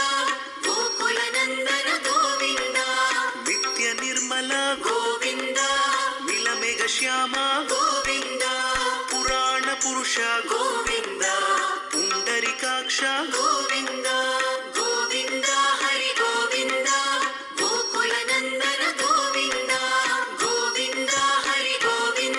ಗೋಕುಲ ನಂದನ ಗೋವಿಂದ, ನಿತ್ಯ ನಿರ್ಮಲ ಗೋವಿಂದ, ನೀಲಮೇಘ ಶ್ಯಾಮ ಗೋವಿಂದ, ಪುರಾಣ ಪುರುಷ ಗೋವಿಂದ, ಪುಂಡರಿಕಾಕ್ಷ ಗೋವಿಂದ, ಗೋವಿಂದ ಹರಿ ಗೋವಿಂದ, ಗೋಕುಲ ನಂದನ ಗೋವಿಂದ, ಗೋವಿಂದ ಹರಿ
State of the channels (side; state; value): both; identical; correlation 1.00